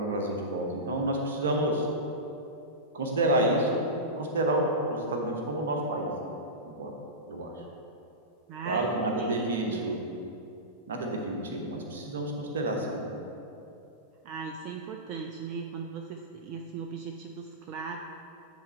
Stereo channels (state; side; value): normal; both; correlation -0.19